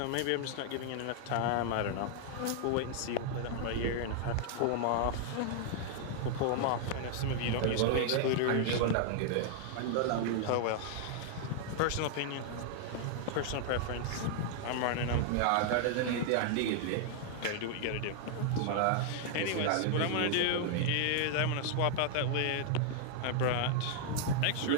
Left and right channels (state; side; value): different; both; correlation 0.00